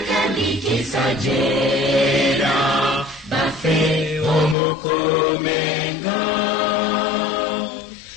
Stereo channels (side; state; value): right; drops out; at 4.5 s